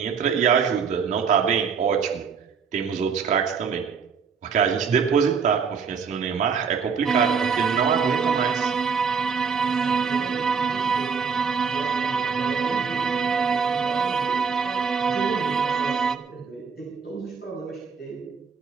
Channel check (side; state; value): left; quieter; 6.0 dB